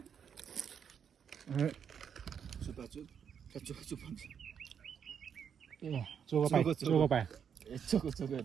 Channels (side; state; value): left; quieter; 7.7 dB